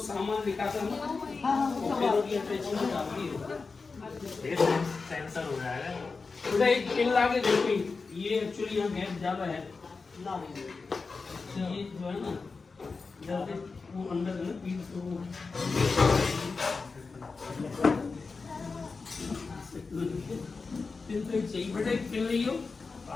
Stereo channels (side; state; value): right; quieter; 4.4 dB